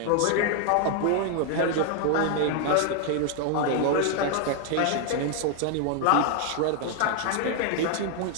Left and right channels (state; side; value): different; both; correlation 0.00